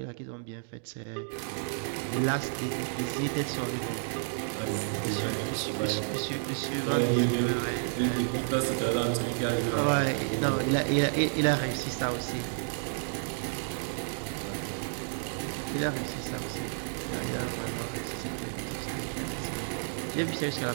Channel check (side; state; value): left; silent; digital silence